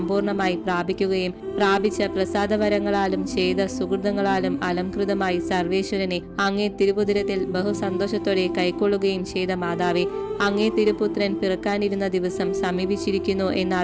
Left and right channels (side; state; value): both; identical; correlation 1.00